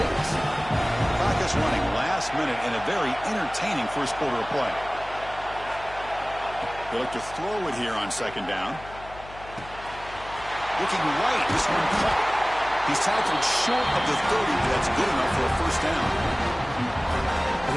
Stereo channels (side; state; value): left; noise; hum, 17 dB below the sound